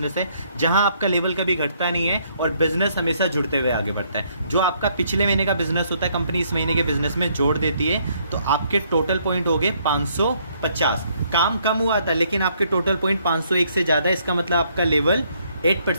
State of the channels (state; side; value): inverted; both; correlation -0.69